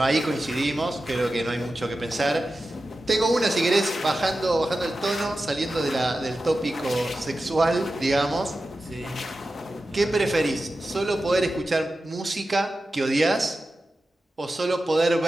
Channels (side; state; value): both; normal; correlation 0.93